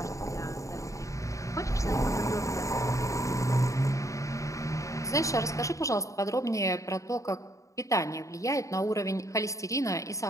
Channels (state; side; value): late; right; 0.15 ms